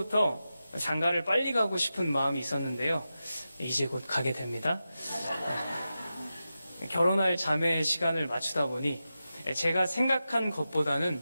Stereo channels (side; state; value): both; inverted; correlation -0.92